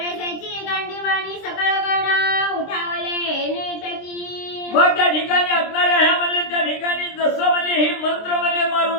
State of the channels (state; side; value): late; right; 23 ms